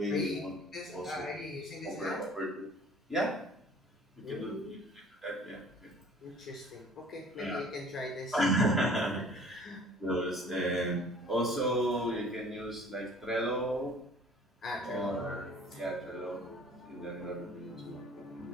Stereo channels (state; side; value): normal; both; correlation 0.50